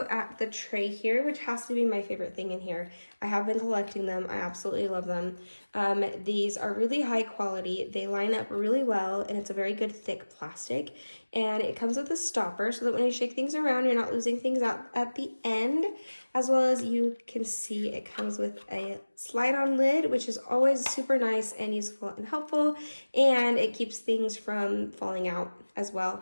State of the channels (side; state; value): both; inverted; correlation -1.00